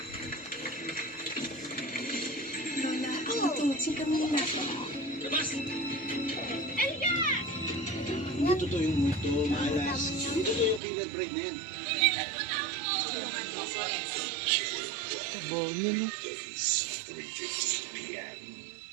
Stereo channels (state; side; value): drops out; left; at 10.8 s